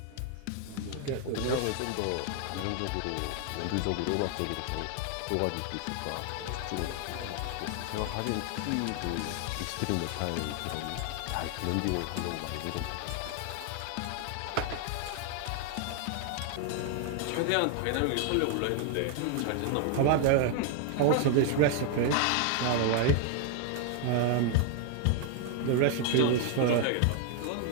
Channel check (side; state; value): both; different; correlation 0.00